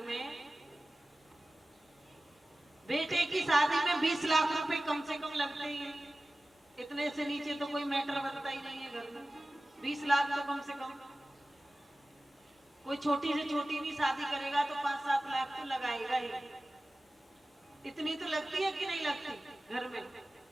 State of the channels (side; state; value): both; normal; correlation 0.97